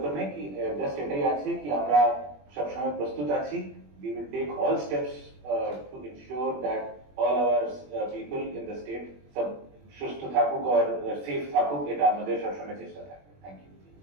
নেই, কি জাস্ট এটাই আছে কি আমরা সবসময় প্রস্তুত আছি। We will take all steps to ensure that all our people in the state সব সুস্থ থাকুক আর সেফ থাকুক, এটা আমাদের সবসময় চেষ্টা থাকবে। Thank you.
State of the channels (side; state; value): left; late; 21 ms